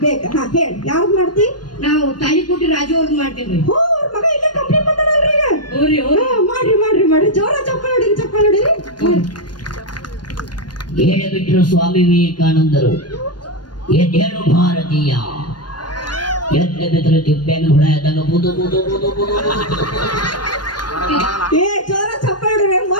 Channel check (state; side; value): late; right; 0.70 ms